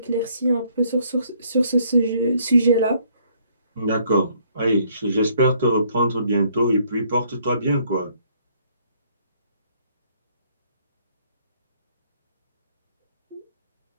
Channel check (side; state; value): both; inverted; correlation -0.65